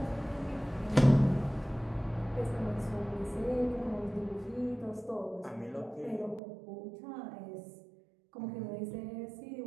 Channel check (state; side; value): drops out; left; at 6.4 s